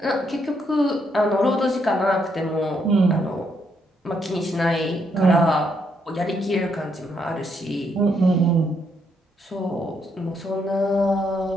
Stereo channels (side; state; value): both; normal; correlation 0.75